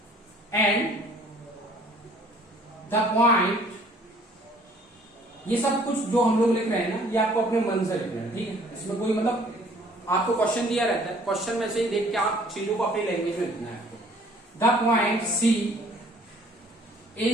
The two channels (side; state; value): both; normal; correlation 0.56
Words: एंड द पॉइंट, ये सब कुछ जो हम लोग लिख रहे हैं ना, ये आपको अपने मन से लिखना है। ठीक है, इसमें कोई मतलब आपको क्वेश्चन दिया रहता है, क्वेश्चन में से ही देख के आप चीजों को अपनी लैंग्वेज में लिखना है आपको। The point C